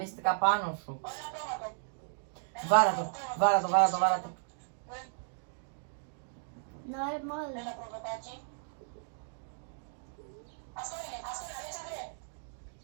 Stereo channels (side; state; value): left; silent; digital silence